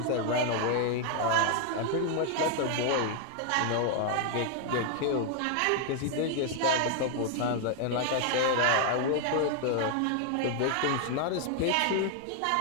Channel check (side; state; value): both; different; correlation 0.00